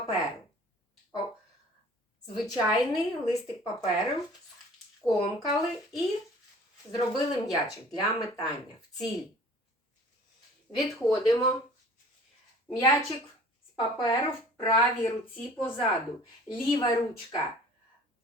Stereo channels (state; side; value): normal; both; correlation 0.48